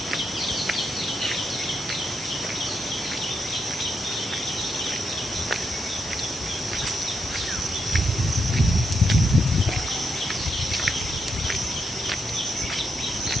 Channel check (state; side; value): normal; both; correlation 0.81